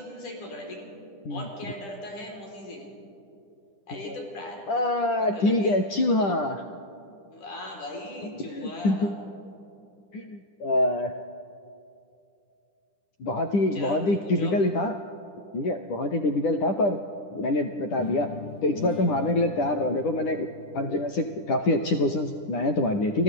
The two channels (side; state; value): right; late; 10 ms